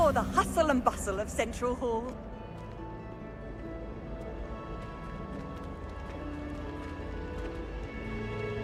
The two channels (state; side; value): identical; both; correlation 1.00